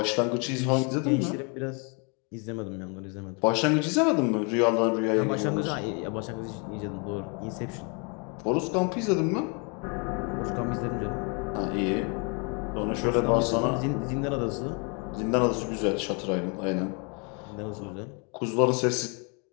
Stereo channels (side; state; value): right; quieter; 34.7 dB